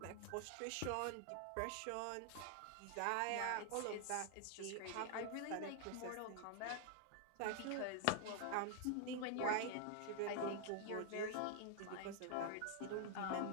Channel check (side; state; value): both; different; correlation 0.00